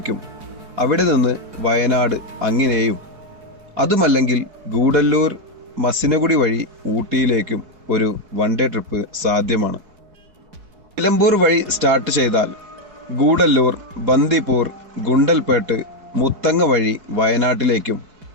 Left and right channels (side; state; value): left; late; 4.7 ms